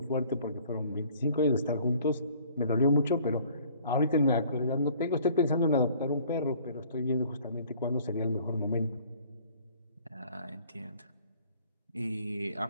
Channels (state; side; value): inverted; both; correlation -0.55